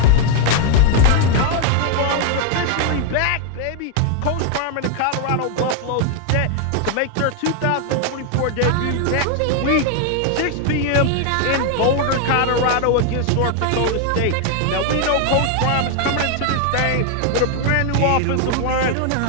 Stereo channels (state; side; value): different; both; correlation 0.00